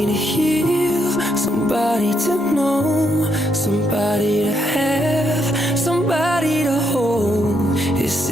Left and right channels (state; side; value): normal; both; correlation 0.77